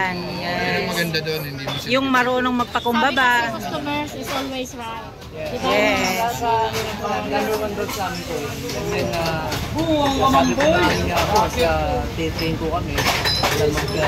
Ang maganda doon, hindi mo siya. Yung marunong magpakumbaba. Customers is always right. Yes. Number one road sa amin po. And then, sabi ko namin nga po, titrain ko kami.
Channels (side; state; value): both; identical; correlation 1.00